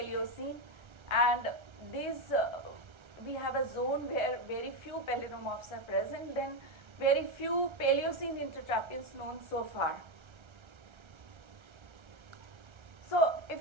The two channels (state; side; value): late; left; 1.3 ms